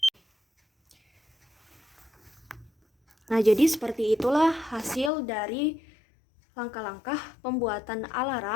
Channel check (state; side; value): drops out; right; at 5.1 s